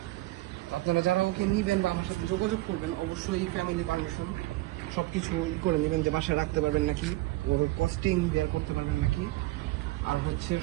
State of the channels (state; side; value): quieter; left; 18.6 dB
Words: তো আপনারা যারা ওকে নিবেন বা আমার সাথে যোগাযোগ করবেন, অবশ্যই ফ্যামিলি পারমিশন সব কিছু করে নেবেন, যে বাসায় রাখতে পারবেন নাকি, ওর কস্টিং বের করতে পারবেন নাকি, আর হচ্ছে